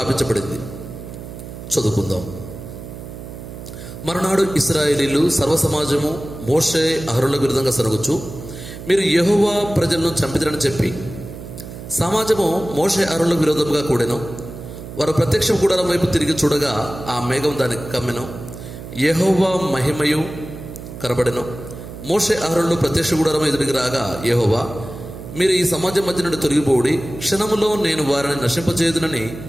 చదువుకుందాం. మరునాడు ఇశ్రాయేలీలు సర్వసమాజము మోషే అహరోనులకు విరుద్ధంగా సరుగుచు, మీరు యెహోవా ప్రజలను చంపిదరని చెప్పి సమాజము మోషే అహరోనులకు విరోధంగా కూడెను. వారు ప్రత్యక్ష గుడారం వైపు తిరిగి చూడగా ఆ మేఘం దానికి కమ్మెను. యెహోవా మహిమయు కనబడెను. మోషే అహరోనులు ప్రత్యక్ష గుడారం ఎదురికి రాగా యెహోవా, మీరు ఈ సమాజం మధ్య నుండి తొలగిపోడి క్షణములో నేను వారిని నశింపచేయుదునని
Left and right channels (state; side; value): noise; right; hum, 12 dB below the sound